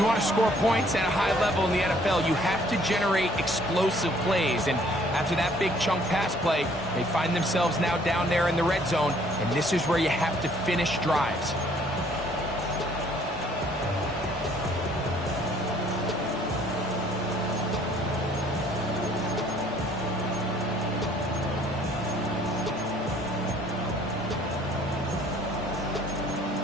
want to score points at a high level in the NFL, you have to generate explosive plays. And after that big chunk pass play, they find themselves now down there in the red zone, and this is where you have to finish drives.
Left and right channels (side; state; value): both; normal; correlation 0.60